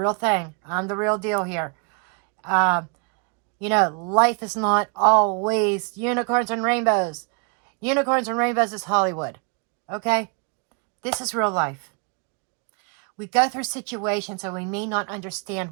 thing. I'm the real deal here. You know, life is not always unicorns and rainbows. Unicorns and rainbows is Hollywood. Okay? This is real life. We go through situations and we may not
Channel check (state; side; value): quieter; left; 38.6 dB